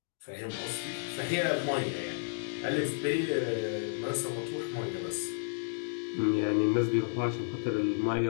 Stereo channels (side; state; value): right; silent; digital silence